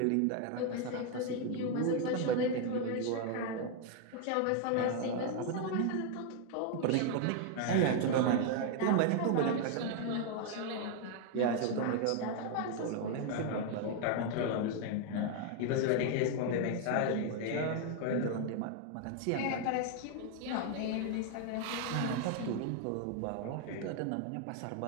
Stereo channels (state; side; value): different; both; correlation 0.00